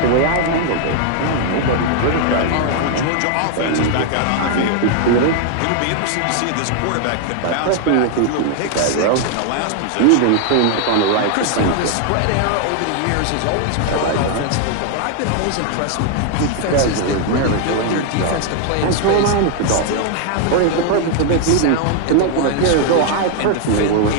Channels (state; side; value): different; both; correlation 0.00